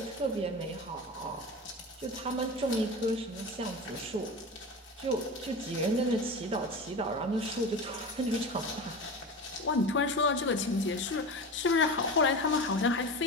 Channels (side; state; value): both; normal; correlation 0.28